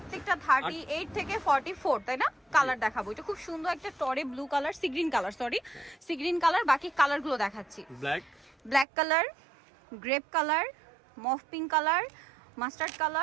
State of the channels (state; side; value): drops out; left; at 8.8 s